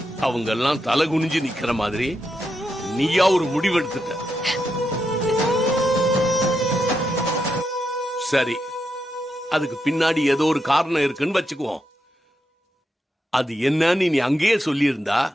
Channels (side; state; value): both; normal; correlation 0.84